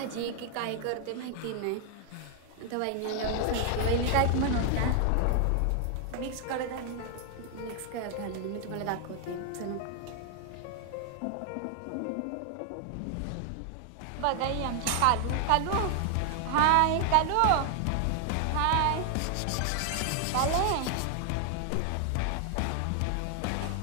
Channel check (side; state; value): both; different; correlation 0.00